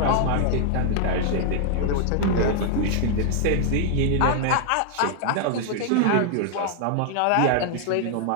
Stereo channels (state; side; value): different; both; correlation 0.00